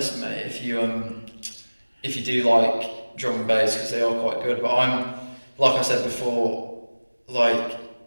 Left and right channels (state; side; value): inverted; both; correlation -1.00